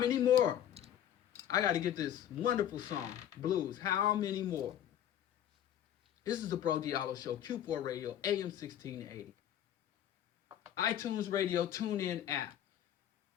more? I got to get this wonderful song, Blues. How many more? This is the Bro Diallo Show, Q4 Radio, AM 1680. iTunes Radio, TuneIn app.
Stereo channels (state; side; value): quieter; right; 10.7 dB